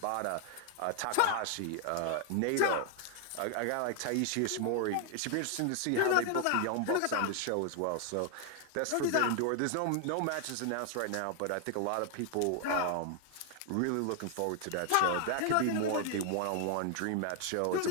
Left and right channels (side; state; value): both; different; correlation 0.00